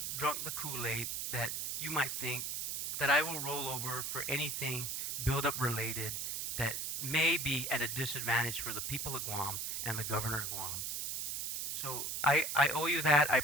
drunk the Kool-Aid that I will roll over for anything build-up related that may be at a disadvantage for the people of Guam and the governor of Guam. So I owe you that, I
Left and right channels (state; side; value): noise; right; hiss, 3 dB below the sound